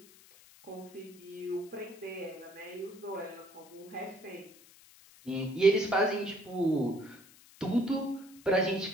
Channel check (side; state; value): left; noise; hiss, 23 dB below the sound